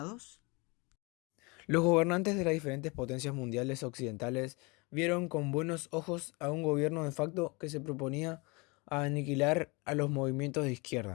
Los gobernantes de las diferentes potencias mundiales occidentales vieron con buenos ojos a un gobierno de facto que se proponía a aniquilar a los movimientos de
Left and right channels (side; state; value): right; quieter; 27.8 dB